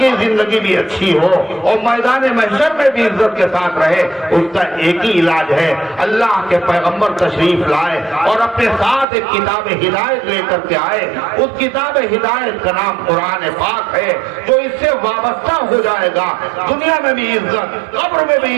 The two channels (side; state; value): left; drops out; at 9.1 s